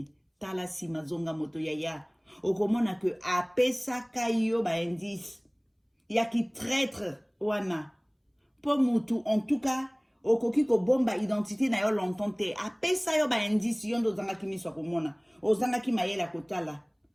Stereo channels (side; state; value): both; identical; correlation 1.00